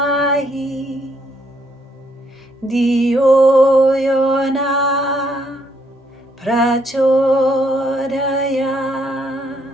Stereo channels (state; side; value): normal; both; correlation 0.72